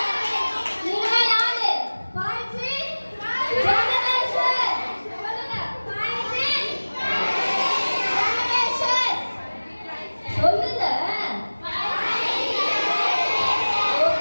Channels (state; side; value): inverted; both; correlation -1.00